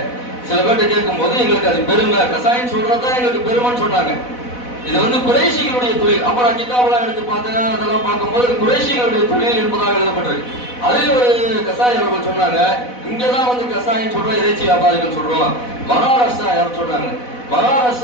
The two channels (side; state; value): right; late; 4.1 ms